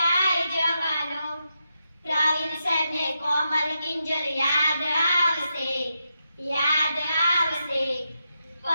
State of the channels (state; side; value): inverted; both; correlation -0.85